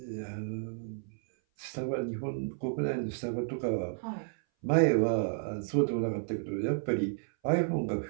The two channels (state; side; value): silent; left; 56 dB below the other